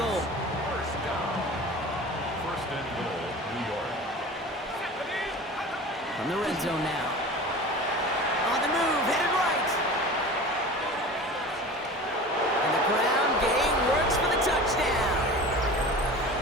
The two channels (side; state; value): both; normal; correlation 0.36